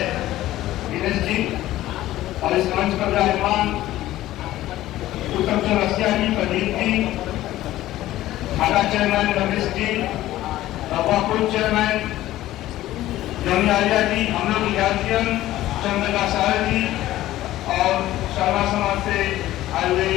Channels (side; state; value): right; quieter; 15.0 dB